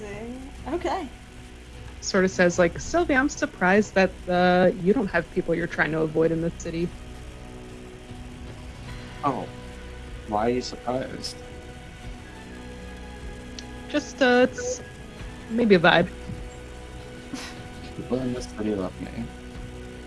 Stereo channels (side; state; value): both; identical; correlation 1.00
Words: Okay. Sort of says like, "Sylvia, I'm surprised that you don't have people you're trying to avoid in this city." Oh, why are you surprised? Just it's maybe a vibe. People in this city love me.